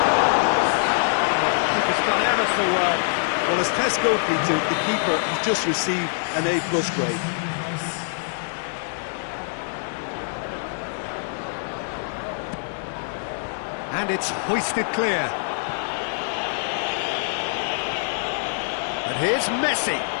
Oh, the keeper's done ever so well. Well, as test goalkeeper, the keeper has just received an A+ grade. And it's hoisted clear. And here's Messi.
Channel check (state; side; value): silent; right; digital silence